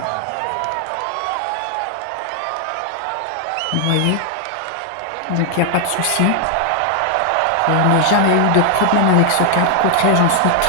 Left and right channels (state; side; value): different; both; correlation 0.00